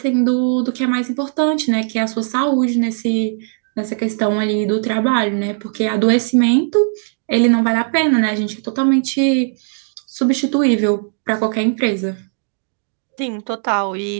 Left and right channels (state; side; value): silent; left; digital silence